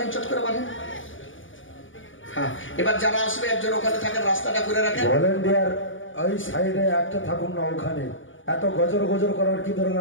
চট করে বানেন। হ্যাঁ, এবার যারা আসবে একজন ওখানে থাকেন, রাস্তাটা করে রাখেন। ভলেন্টিয়ার ওই সাইডে একটা থাকুন না, ওখানে এত গজর গজর করার কি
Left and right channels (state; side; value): late; right; 0.57 ms